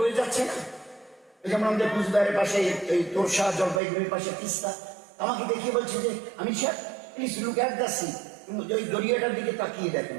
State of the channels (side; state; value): left; drops out; at 3.8 s